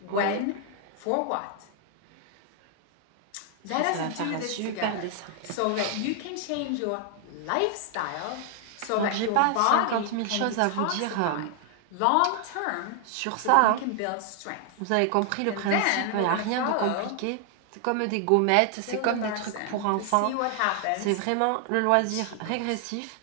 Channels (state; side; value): different; both; correlation 0.00